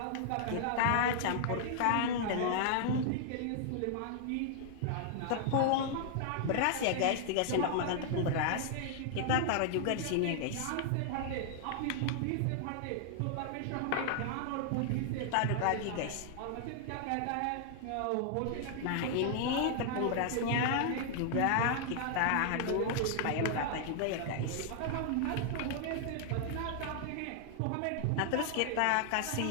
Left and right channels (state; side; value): different; both; correlation 0.00